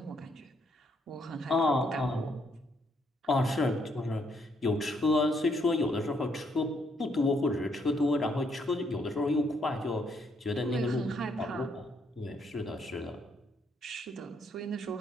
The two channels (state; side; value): normal; both; correlation 0.72